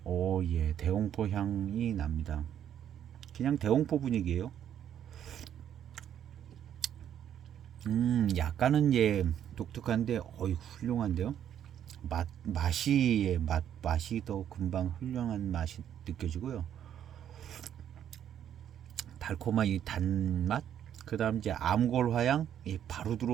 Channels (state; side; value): quieter; left; 9.9 dB